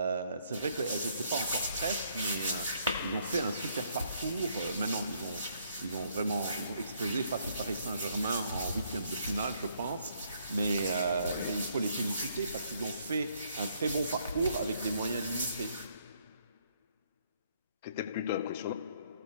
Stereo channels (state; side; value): inverted; both; correlation -0.69